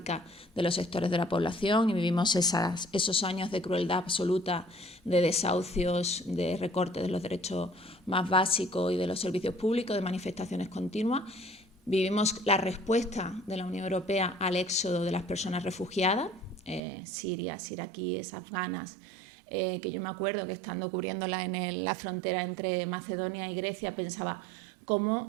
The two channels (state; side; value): drops out; left; at 16.8 s